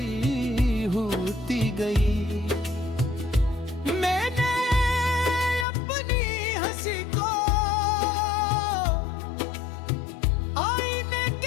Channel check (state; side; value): drops out; right; at 5.7 s